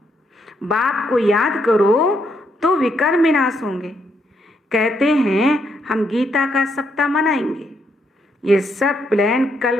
बाप को याद करो तो विकर्म विनाश होंगे। कहते हैं हम गीता का सप्ताह मनाएंगे। ये सब प्लान कल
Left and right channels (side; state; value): both; normal; correlation 0.76